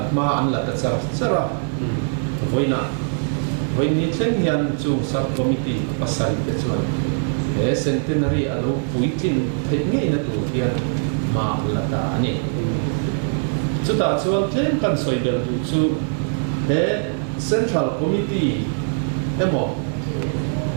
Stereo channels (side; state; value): left; silent; 64 dB below the other